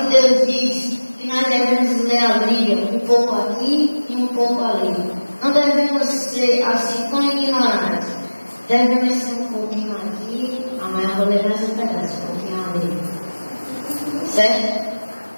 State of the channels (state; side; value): inverted; both; correlation -1.00